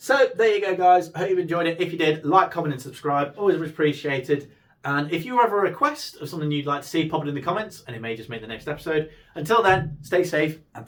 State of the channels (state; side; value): identical; both; correlation 1.00